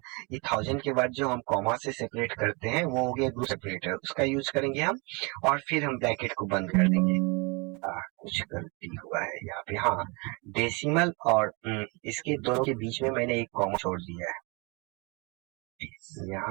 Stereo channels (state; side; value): quieter; left; 30.0 dB